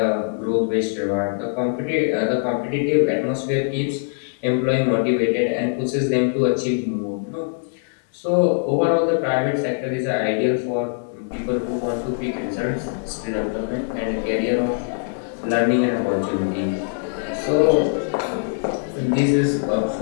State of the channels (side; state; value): right; silent; 60 dB below the other